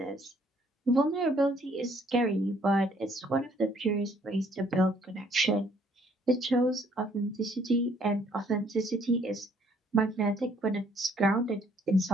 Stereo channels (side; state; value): both; normal; correlation 0.63